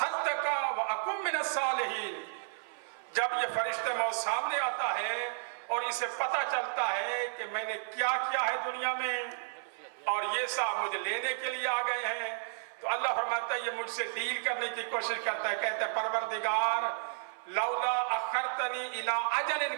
وَأَكُن مِّنَ الصَّالِحِينَ۔ جب یہ فرشتہ موت سامنے آتا ہے اور اسے پتہ چلتا ہے کہ میں نے کیا کیا ہے دنیا میں اور یہ صاحب مجھے لینے کے لیے آ گئے ہیں، تو اللہ فرماتا ہے یہ مجھ سے ڈیل کرنے کی کوشش کرتا ہے، کہتا ہے پروردگار لولا اخرتنی الی اجل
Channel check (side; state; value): left; silent; 56 dB below the other